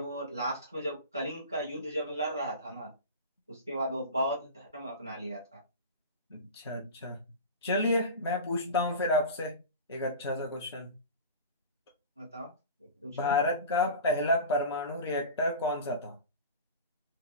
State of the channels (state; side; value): inverted; both; correlation -0.31